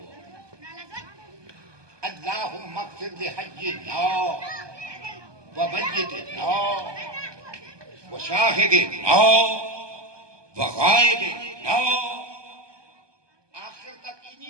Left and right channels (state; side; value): late; left; 1.2 ms